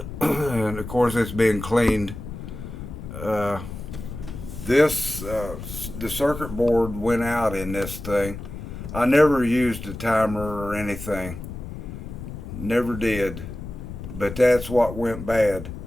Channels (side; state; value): left; noise; rumble, 10 dB below the sound